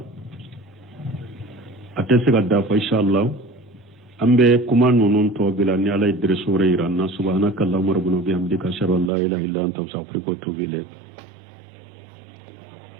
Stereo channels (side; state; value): left; drops out; at 9.1 s